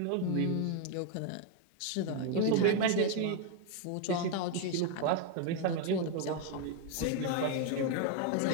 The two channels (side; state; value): both; different; correlation 0.01